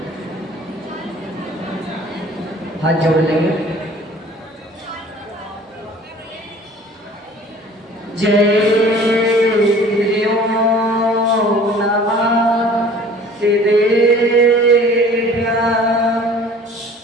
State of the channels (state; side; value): normal; both; correlation 0.48